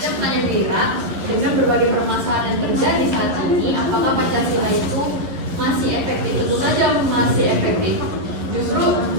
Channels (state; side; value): late; left; 11 ms